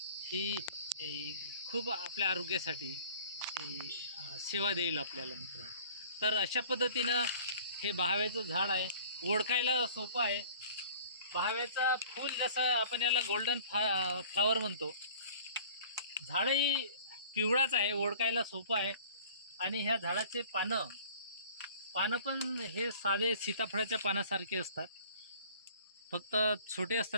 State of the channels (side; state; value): both; inverted; correlation -0.48